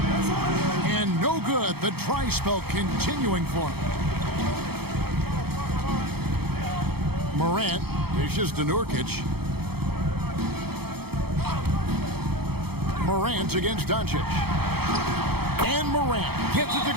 And no good. The dry spell continuing for him. Morant dishes to Nurkic. Morant against Doncic. And Morant gets it to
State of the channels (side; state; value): left; late; 0.96 ms